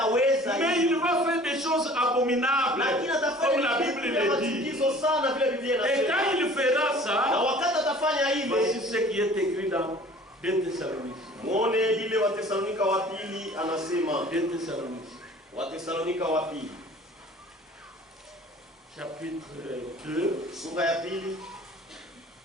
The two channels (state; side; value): normal; both; correlation 0.48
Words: Mais hivi. il va faire des choses abominables, Lakini comme atafanya la vitu Bible vya le dit. machukizo sana vile Biblia Et inasema, quand il fera na ça, wakati atafanya voici hivi, ce qui est écrit dans 2 Thessaloniciens. muone ile Watesalonika wa pili anasema, 2 Thessaloniciens, Watesalonika wa pili chapitre 2, sura ya pili